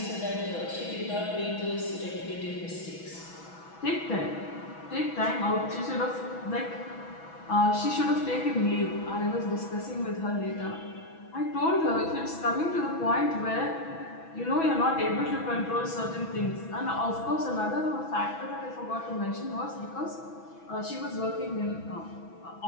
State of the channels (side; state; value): right; late; 6.1 ms